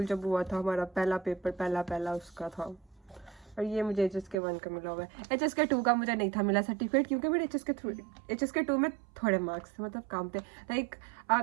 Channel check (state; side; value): drops out; left; at 4.4 s